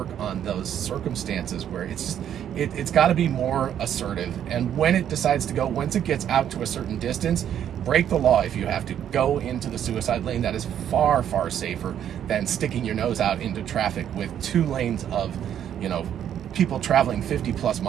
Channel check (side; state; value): left; quieter; 9.8 dB